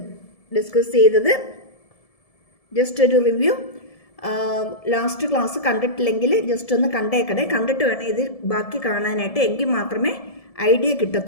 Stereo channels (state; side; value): late; right; 1.7 ms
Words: ഡിസ്കസ് ചെയ്തത്. ജസ്റ്റ് ഒരു റിവ്യൂ. ലാസ്റ്റ് ക്ലാസ് കണ്ടിട്ടില്ലെങ്കിൽ ജസ്റ്റ് ഒന്ന് കണ്ടിട്ട് വേണം ഇത് ബാക്കി കാണാനായിട്ട്. എങ്കിൽ മാത്രമേ ഐഡിയ